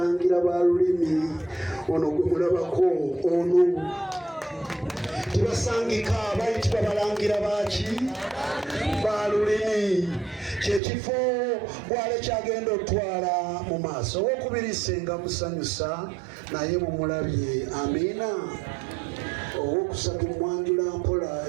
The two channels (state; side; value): drops out; left; at 10.8 s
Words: ba lulimi ono gwe mulabako ono tibasangika bayitibwa balangira baki ba lulimi kyekifo Bwale kyagenda otwala mu maaso owokubiri Senga musanyusa naye mumulabye amiina owokusatu Mwanjula Mpola